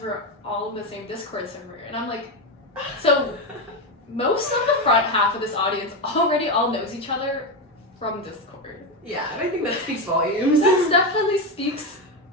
we're all in the same Discord server. And I'm like, so most of the front half of this audience already all knows each other from Discord. Yeah, and I think that speaks volumes. That definitely speaks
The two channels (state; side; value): normal; both; correlation 0.12